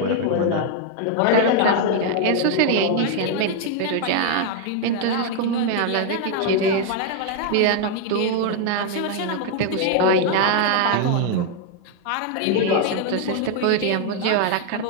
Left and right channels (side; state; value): both; different; correlation 0.00